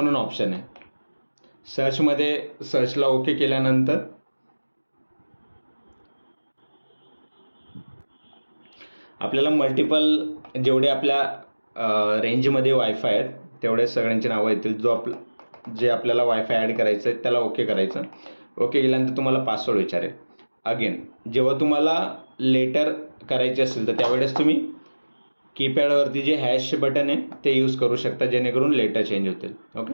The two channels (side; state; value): both; inverted; correlation -1.00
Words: ऑप्शन आहे. सर्चमध्ये सर्चला ओके केल्यानंतर आपल्याला मल्टिपल जेवढे आपल्या रेंजमध्ये वायफाय आहेत तेवढे सगळ्यांची नावं येतील. जे आपल्याला वायफाय ॲड करायचं आहे त्याला ओके करायचं. ओके केल्यानंतर तुम्हाला पासवर्ड विचारेल. अगेन जेव्हा तुम्हाला लेटर करायचे असेल तर त्यावेळेस तुम्ही कीपॅडवरती जे हॅश बटन आहे ते यूज करू शकता, जेणेकरून लेटर चेंज होतील. ओके,